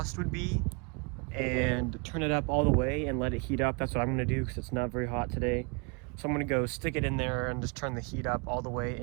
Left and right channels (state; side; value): quieter; left; 32.8 dB